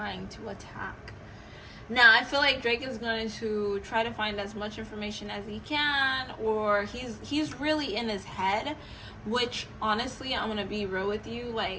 to attack. Now, I feel like Drake is going to try to find as much information as he can, or he's really in his head, which, honestly, I'm going to be real with you,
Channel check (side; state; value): both; identical; correlation 1.00